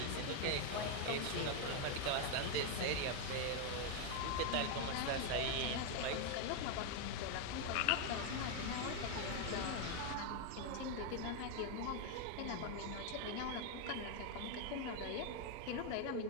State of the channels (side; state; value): both; different; correlation 0.01